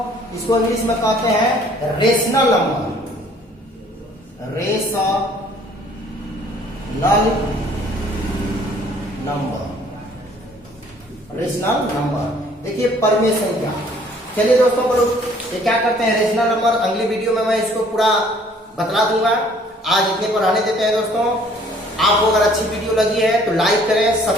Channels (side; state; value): both; normal; correlation 0.57